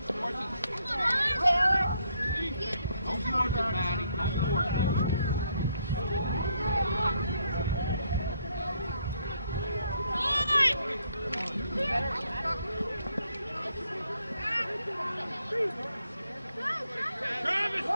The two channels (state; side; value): inverted; both; correlation -0.73